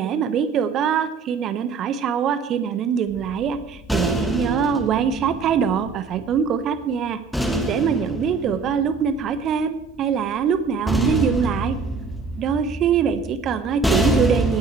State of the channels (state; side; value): quieter; left; 5.3 dB